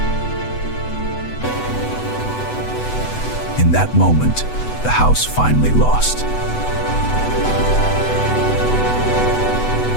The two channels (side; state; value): right; late; 8.0 ms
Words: In that moment, the house finally lost.